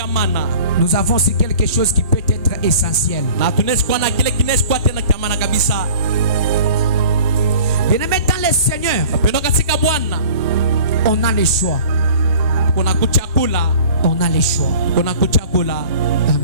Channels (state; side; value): inverted; both; correlation -0.45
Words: Nous avons aussi quelque chose qui peut être essentiel. Bien-aimé dans le Seigneur, on a le choix. On a le choix.